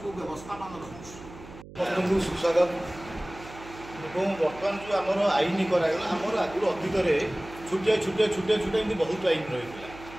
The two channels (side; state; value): right; noise; hum, 17 dB below the sound